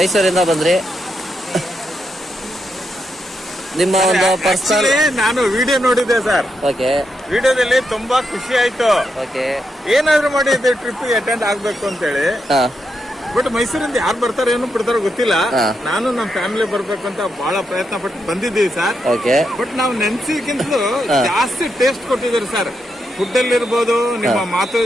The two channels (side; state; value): both; normal; correlation 0.83